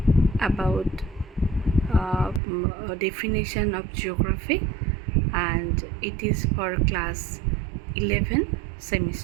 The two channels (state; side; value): drops out; left; at 2.4 s